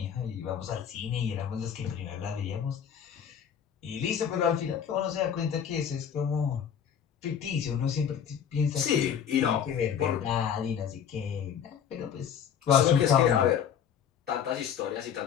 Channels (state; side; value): quieter; right; 8.2 dB